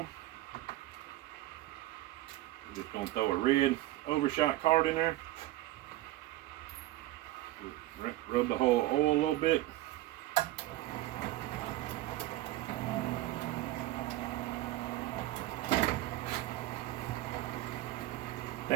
I'm just going to throw a red overshot card in there. Rub the whole oil a little bit.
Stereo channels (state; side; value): quieter; left; 16.4 dB